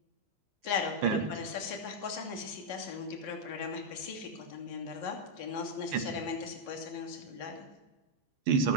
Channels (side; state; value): left; late; 15 ms